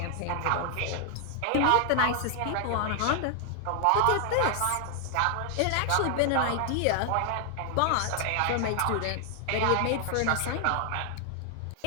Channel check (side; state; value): both; different; correlation 0.00